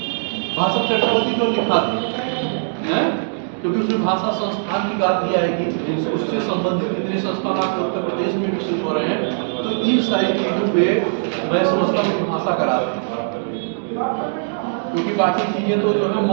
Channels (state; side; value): silent; left; digital silence